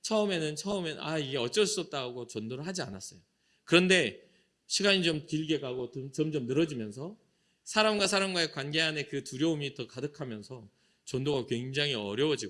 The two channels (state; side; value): identical; both; correlation 1.00